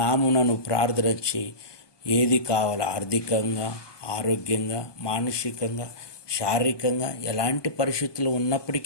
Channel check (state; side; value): late; right; 1.2 ms